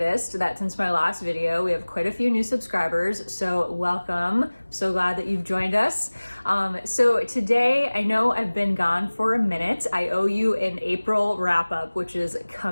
that since my last video, we have quite a few new subscribers, so welcome. So glad that you've joined us. So today, I know I've been gone for a minute. I owe you an April wrap up, which is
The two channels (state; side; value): inverted; both; correlation -1.00